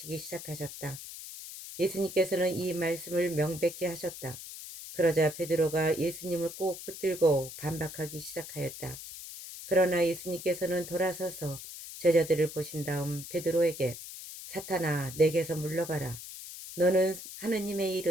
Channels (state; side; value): noise; left; hiss, 12 dB below the sound